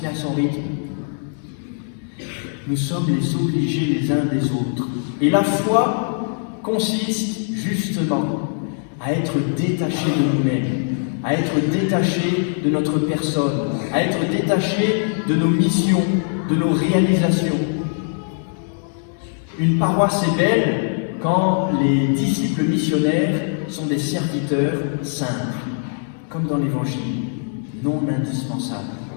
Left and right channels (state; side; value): silent; right; digital silence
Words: met à son rythme. Nous sommes les obligés les uns des autres. Et la foi consiste justement à être détaché de nous-mêmes, à être détaché de notre personne, à être détaché de nos missions, de nos réalisations. Une paroisse est belle quand les disciples missionnaires sont des serviteurs simples, comme dans l'Évangile, non indispensables.